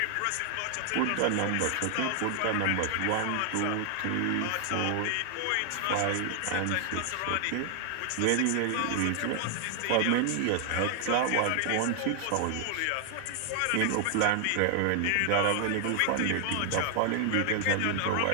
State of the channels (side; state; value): both; different; correlation 0.00